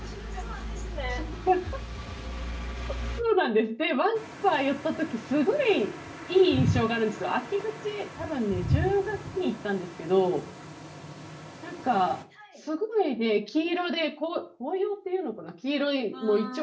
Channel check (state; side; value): identical; both; correlation 1.00